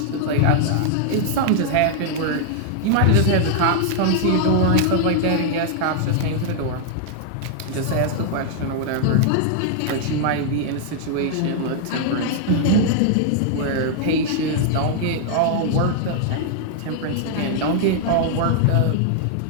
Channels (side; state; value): both; different; correlation -0.01